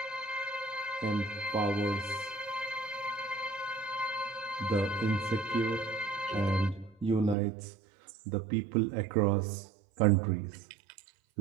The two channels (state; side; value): drops out; left; at 7.4 s